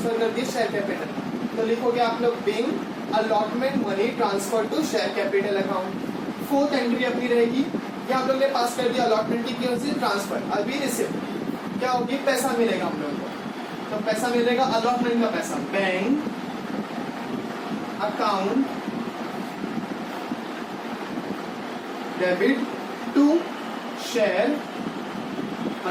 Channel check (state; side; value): identical; both; correlation 1.00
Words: कर दिया? Share capital. तो लिखोगे आप लोग being allotment money transfer to share capital account. Fourth entry अपनी रहेगी, ये हम लोग ने पास कर दिया अलॉटमेंट की ट्रांसफर। अभी रिसिप्ट क्या होगी? पैसा मिलेगा हम लोग को। तो पैसा मिलेगा अलॉटमेंट का पैसा, bank account debit to share